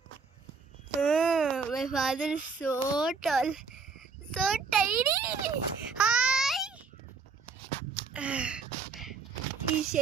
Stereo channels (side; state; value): left; quieter; 4.9 dB